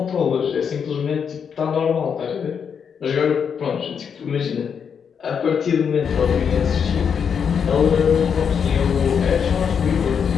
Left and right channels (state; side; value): quieter; right; 7.0 dB